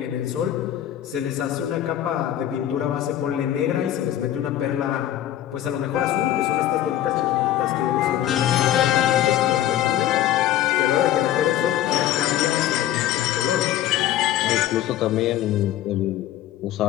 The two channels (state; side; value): quieter; right; 12.5 dB